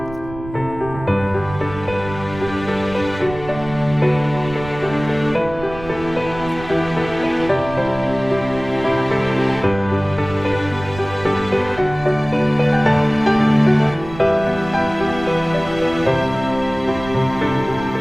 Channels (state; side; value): noise; right; rumble, 14 dB below the sound